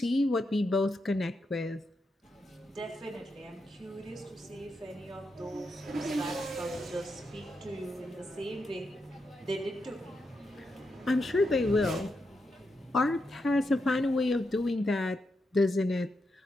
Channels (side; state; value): both; normal; correlation 0.84